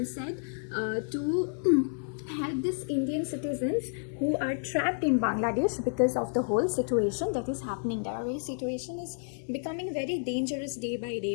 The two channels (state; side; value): silent; right; digital silence